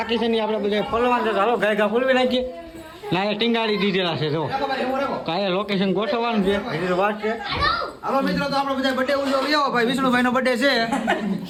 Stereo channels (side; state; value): both; identical; correlation 1.00